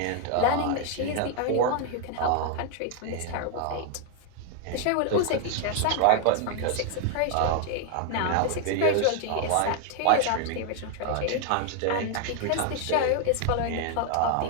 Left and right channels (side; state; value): both; different; correlation 0.00